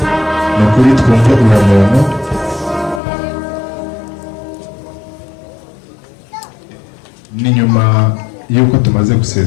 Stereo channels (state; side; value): drops out; right; at 3.0 s